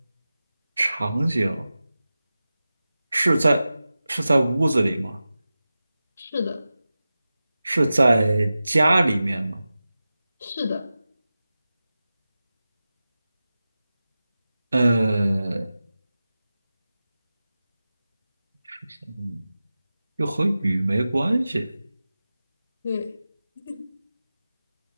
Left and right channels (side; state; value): both; inverted; correlation -0.95